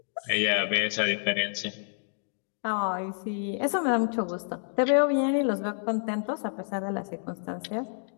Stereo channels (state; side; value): silent; right; digital silence